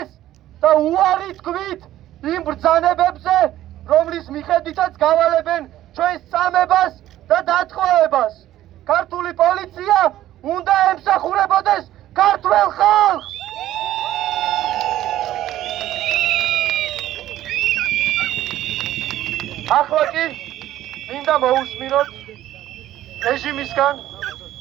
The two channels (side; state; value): left; quieter; 13.6 dB